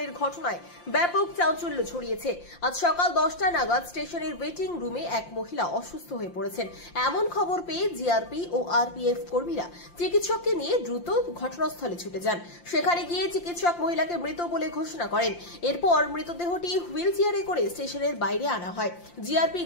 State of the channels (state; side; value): late; right; 5.7 ms